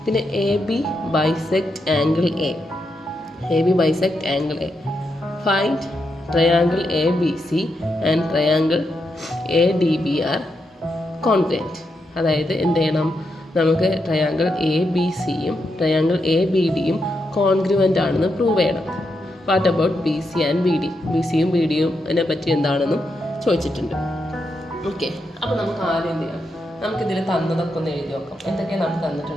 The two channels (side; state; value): both; normal; correlation 0.84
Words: പിന്നെ AB bisect angle AB bisect angle find triangle ABC and triangle ADB are congruent. അതായത് എന്ത് ചെയ്യണം? നമുക്ക് ട്രയാങ്കിൾ ABCയും ട്രയാങ്കിൾ ABDയും കോൺഗ്രുവൻ്റ് ആണെന്ന് പ്രൂവ് ചെയ്യണം. What about BC and BD? BCയും BDയും അതിനെ പറ്റി എന്താണെന്നും ചോദിച്ചിട്ടുണ്ട്. ഓക്കെ, അപ്പോൾ നമുക്ക് ആദ്യം എന്ത് ചെയ്യാം? നമുക്കിതിൽ തന്നതൊക്കെ ഒന്ന് എഴുതി നോക്കാം. എന്തൊക്കെയാണ് നമുക്ക്